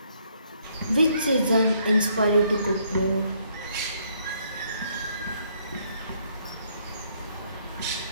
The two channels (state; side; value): inverted; both; correlation -0.70